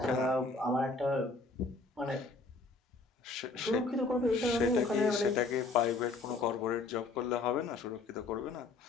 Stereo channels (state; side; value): quieter; right; 3.6 dB